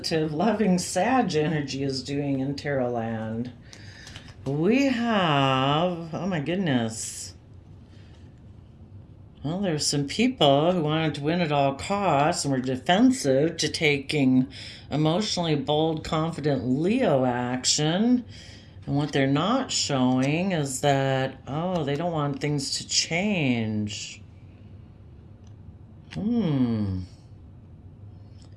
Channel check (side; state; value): both; identical; correlation 1.00